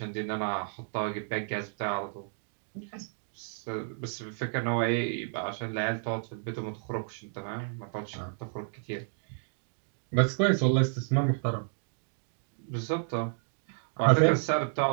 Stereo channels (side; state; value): left; silent; digital silence